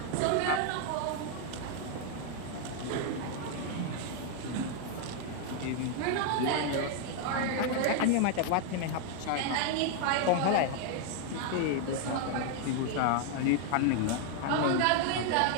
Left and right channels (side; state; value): both; different; correlation 0.00